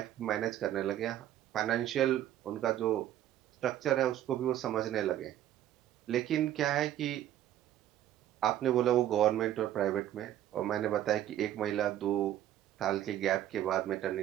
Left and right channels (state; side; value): quieter; left; 12.1 dB